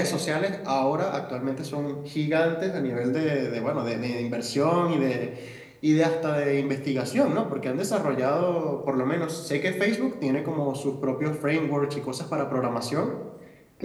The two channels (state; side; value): identical; both; correlation 1.00